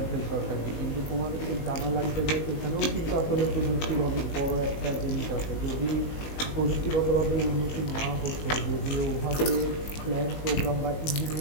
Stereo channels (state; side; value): late; right; 19 ms